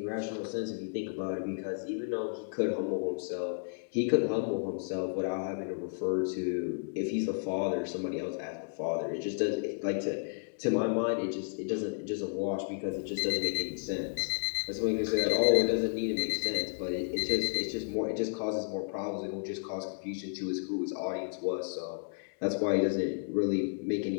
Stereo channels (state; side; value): silent; right; digital silence